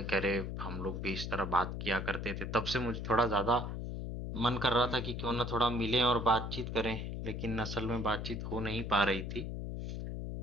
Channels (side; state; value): left; noise; hum, 5 dB below the sound